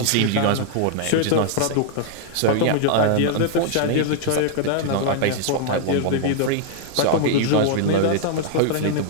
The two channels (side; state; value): both; different; correlation -0.01